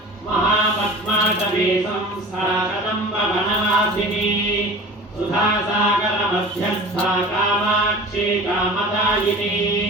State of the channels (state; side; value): normal; both; correlation 0.39